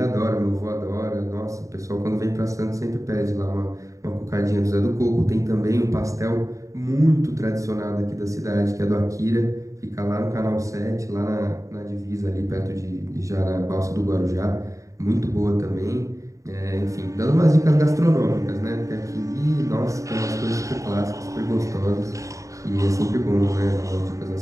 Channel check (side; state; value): left; late; 0.16 ms